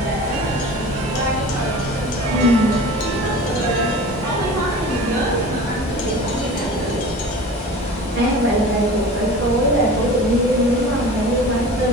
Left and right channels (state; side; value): normal; both; correlation 0.38